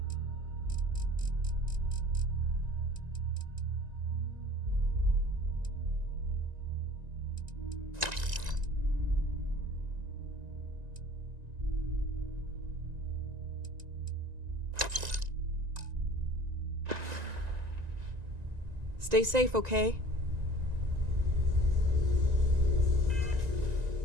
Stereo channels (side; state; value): left; late; 1.9 ms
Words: Stay safe, okay?